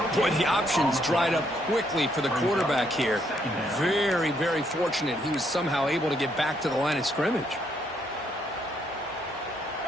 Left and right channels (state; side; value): normal; both; correlation 0.73